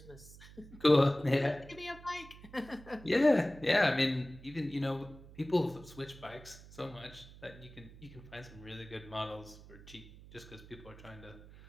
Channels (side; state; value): right; noise; hum, 18 dB below the sound